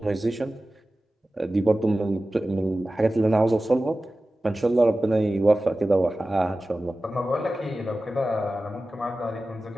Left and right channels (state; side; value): normal; both; correlation 0.95